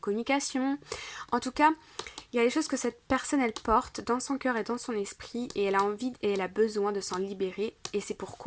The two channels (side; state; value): both; identical; correlation 1.00